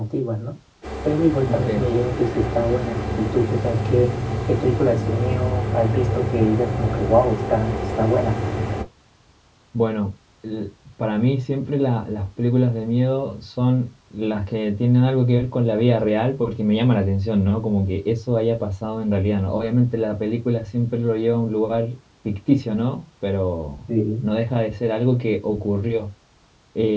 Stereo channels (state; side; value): identical; both; correlation 1.00